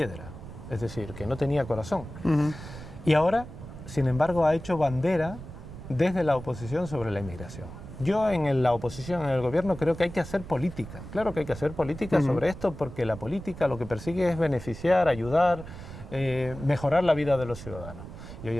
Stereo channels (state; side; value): noise; right; rumble, 13 dB below the sound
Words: es decir, que no tenía corazón. Y ahora, sin embargo, ha hecho bandera desde la oposición sobre la inmigración. Yo en la oposición, en el gobierno, creo que hay que hacer política. Claro que hay que hacer política sobre esto, porque la política lo que persigue es beneficiar, ayudar, mejorar la vida de los ciudadanos. Y hoy